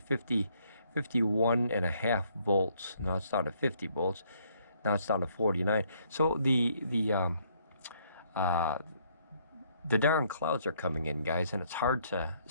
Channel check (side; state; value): both; inverted; correlation -0.68